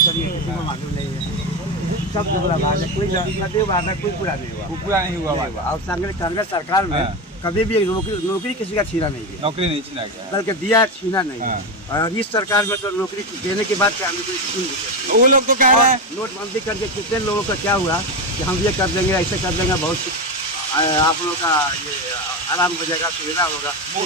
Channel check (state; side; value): normal; both; correlation 0.15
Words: किसी को मालूम नहीं है। सब पूरा वादा, कोई वादा कोई पूरा नहीं हुआ, पूरा नहीं हुआ वादा। और कांग्रेस सरकार में कभी भी नौकरी किसी का छीना नहीं गया, नौकरी नहीं छीना गया, बल्कि दिया, छीना नहीं। और इस सरकार में तो नौकरी देने के बाद वो लोग तो कह रहे हैं नोटबंदी करके कितने लोगों का क्या हुआ कि हम ये कर देंगे, ऐसे कर देंगे, बहुत आप लोगों का ये आराम हो जाएगा, सुविधा होगा।